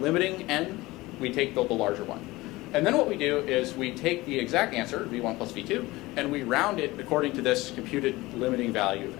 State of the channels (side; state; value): right; quieter; 20.1 dB